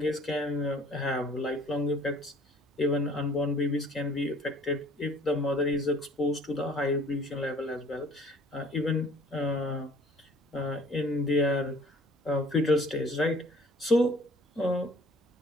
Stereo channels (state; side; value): normal; both; correlation 0.53